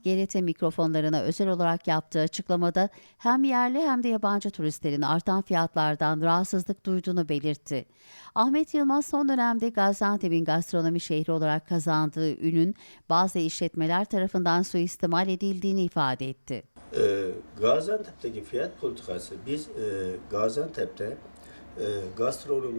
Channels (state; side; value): inverted; both; correlation -1.00